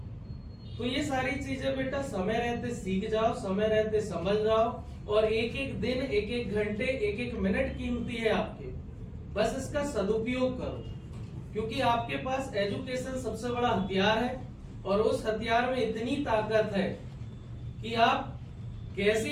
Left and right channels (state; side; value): identical; both; correlation 1.00